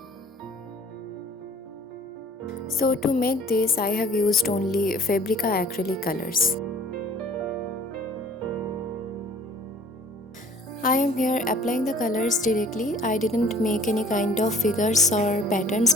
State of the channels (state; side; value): normal; both; correlation 0.51